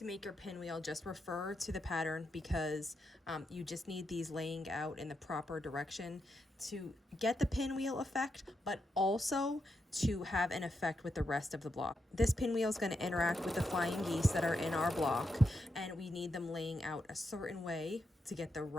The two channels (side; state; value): both; normal; correlation 0.84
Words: make your pinwheel, just refer to the pattern because you just need these laying out in the proper direction to get the pinwheel effect, but also to have an effect with the rest of the block. This pinwheel is going to interact with the flying geese that are in our block, and we need them laying out a certain way to get the